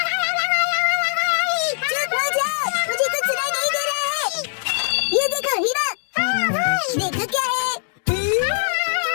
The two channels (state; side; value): silent; right; digital silence